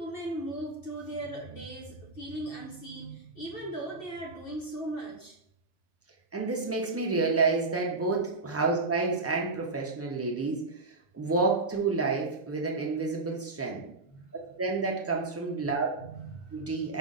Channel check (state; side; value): quieter; left; 3.3 dB